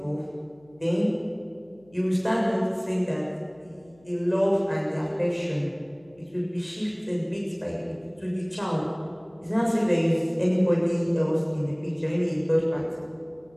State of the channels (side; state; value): left; noise; hum, 29 dB below the sound